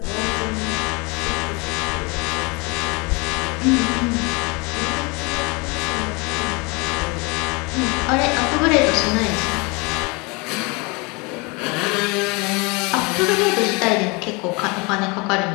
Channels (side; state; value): right; quieter; 28.1 dB